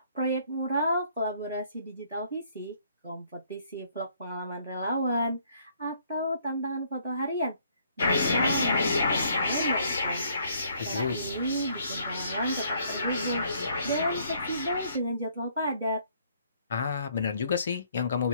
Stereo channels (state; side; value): inverted; both; correlation -0.65